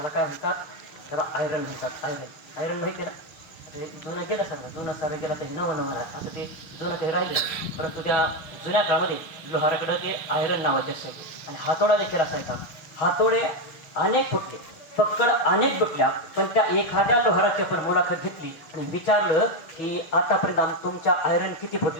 काय म्हणतात? त्याला आयरन म्हणतात. आयरन आयरन माहिती आहे ना? ते जुनं गेलं सर, जुनं सारं गेलं तर नवं नवं आहे असं ते जुनं काही राहिलं, परंतु त्या जुन्या काळामध्ये लोहाराकडं ते आयरन नावाचे असायचे आणि हातोडा देखील असायचा. हातोडे अनेक फुटले, पक्कड अनेक तुटल्या, पण त्या एखाद्या लोहाराची आपण मुलाखत घेतली आणि विचारलं की आतापर्यंत तुमच्या आयरन किती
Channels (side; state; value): right; late; 6.5 ms